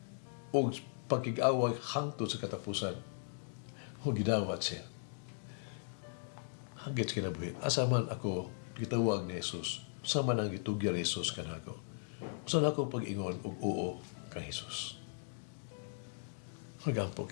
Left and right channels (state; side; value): silent; right; digital silence